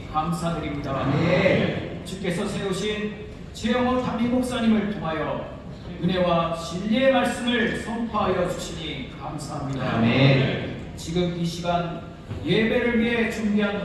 감사드립니다. 아멘. 주께서 세우신 최영호 담임 목사님을 통하여 은혜와 진리의 말씀을 선포하여 주시니 감사합니다. 아멘. 지금 이 시간 예배를 위해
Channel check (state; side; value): identical; both; correlation 1.00